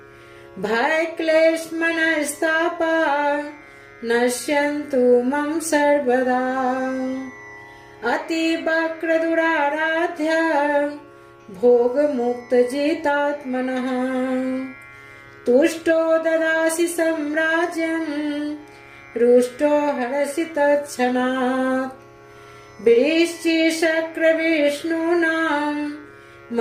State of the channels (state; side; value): identical; both; correlation 1.00